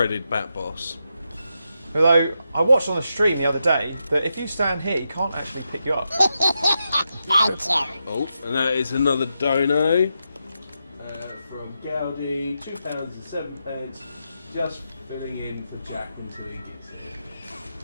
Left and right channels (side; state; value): both; inverted; correlation -0.85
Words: Bat Boss. Although, I watched on the stream the other day that if you stand here, he can't actually pick you up. Thank you. Oh, and that is another dono from Gaudi, £2.07, just filling in for Jack until he gets here.